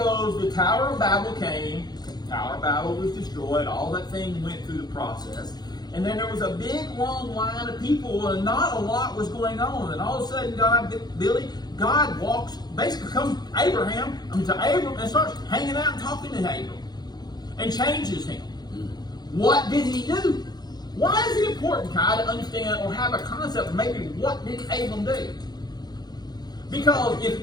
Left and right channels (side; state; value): right; late; 0.20 ms